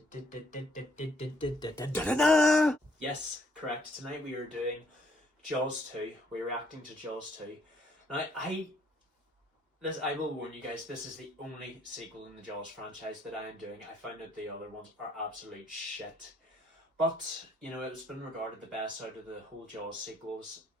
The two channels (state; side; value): normal; both; correlation 0.67